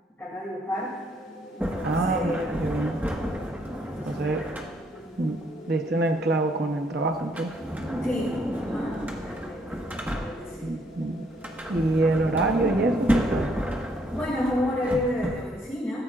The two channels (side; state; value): both; normal; correlation 0.69